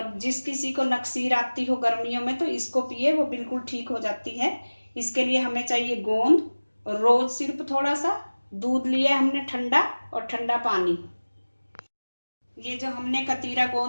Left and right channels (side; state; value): both; inverted; correlation -1.00